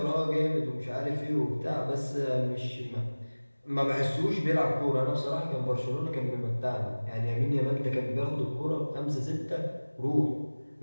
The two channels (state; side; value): inverted; both; correlation -1.00